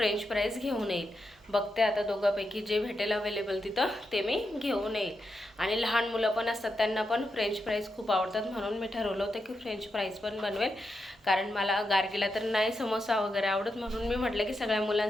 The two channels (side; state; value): both; normal; correlation 0.86